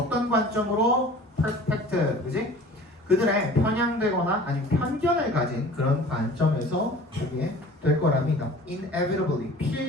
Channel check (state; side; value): normal; both; correlation 0.44